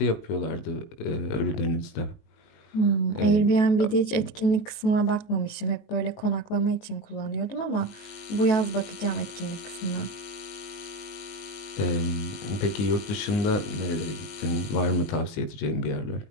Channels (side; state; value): right; late; 19 ms